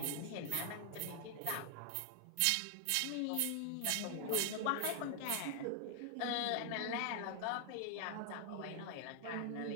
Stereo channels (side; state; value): both; different; correlation 0.00